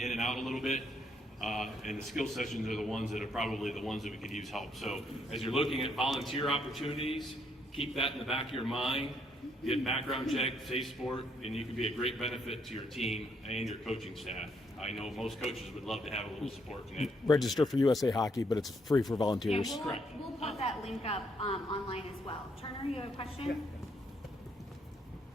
in and out a little bit. And the skill sessions are the ones that are probably the ones that we could use help. So as you're looking at volunteer opportunities, keep that in the back of your mind. Get background check, safe sport, and you can be a great benefit to your team and your coaching staff. I know most coaches would love to have a little support in it. Register for USA Hockey, but it's free for volunteers. Yeah, we'll put that link up online as well. Turner, you have a question?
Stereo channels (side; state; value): both; normal; correlation 0.72